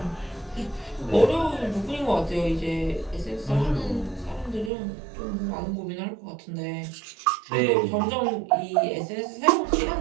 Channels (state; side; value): drops out; left; at 4.7 s